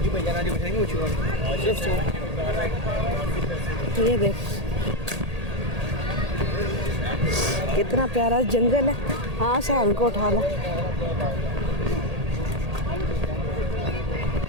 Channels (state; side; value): late; left; 1.8 ms